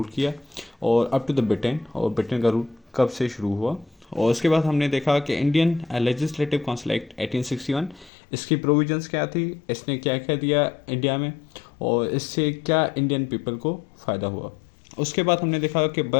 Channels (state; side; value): drops out; right; at 8.1 s